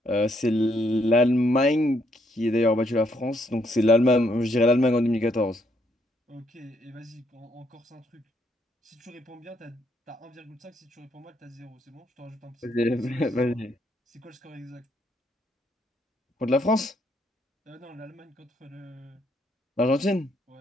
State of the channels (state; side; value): normal; both; correlation 0.72